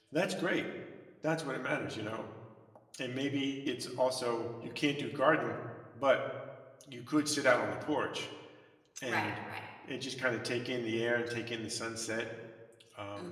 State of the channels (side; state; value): both; identical; correlation 1.00